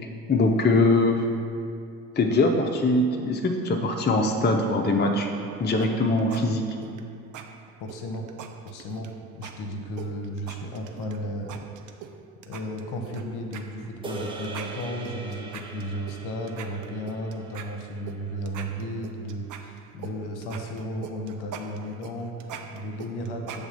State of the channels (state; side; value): normal; both; correlation 0.36